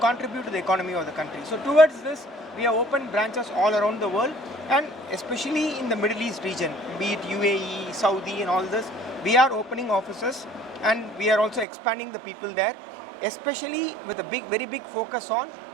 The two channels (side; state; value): left; drops out; at 11.7 s